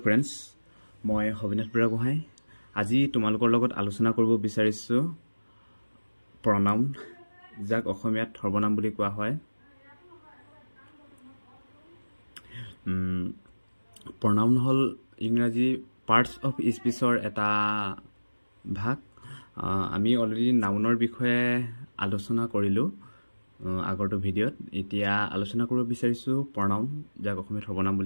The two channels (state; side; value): inverted; both; correlation -1.00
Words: friends, মই হবিনাথ বুঢ়াগোহাঁই আজি তোমালোকৰ লগত আলোচনা কৰিব বিচাৰিছো pronoun যাক অসমীয়াত সৰ্বনাম বুলি কোৱা হয়। pronoun হল ইংৰাজী parts of speechৰ এটা ভাগ। আমি অলৰেডি নাউনৰ বিষয়ে আলোচনা কৰিলো আগৰটো ভিডিঅ'ত। এতিয়া আলোচনা কৰিব বিচাৰিছো pronoun যাক অসমীয়াত সৰ্বনাম